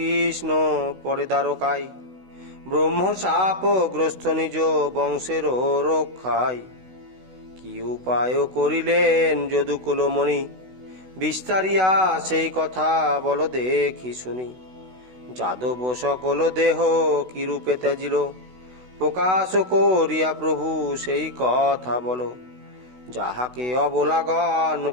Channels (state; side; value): late; left; 16 ms